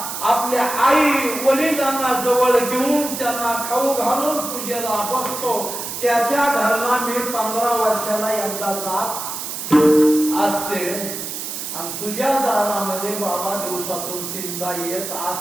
आपल्या आई वडिलांना जवळ घेऊन त्यांना खाऊ घालून पूजेला बसतो. त्याच्या घरला मी 15 वर्षाला एकदा जात असते. आणि तुझ्या दारामध्ये बाबा दिवसातून 3दा येत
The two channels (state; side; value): noise; right; hiss, 6 dB below the sound